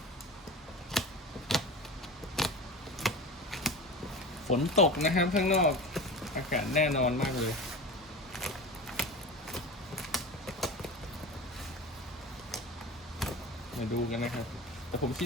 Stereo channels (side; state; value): both; normal; correlation 0.32